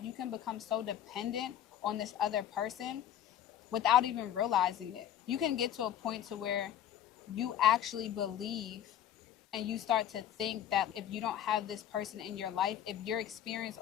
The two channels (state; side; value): quieter; right; 10.8 dB